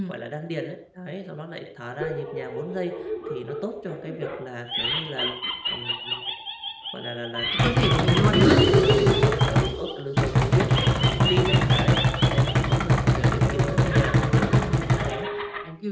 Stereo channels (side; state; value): both; identical; correlation 1.00